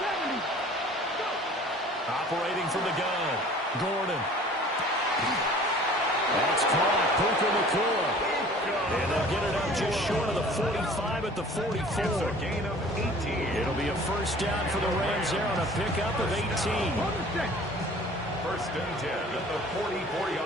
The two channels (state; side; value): normal; both; correlation 0.48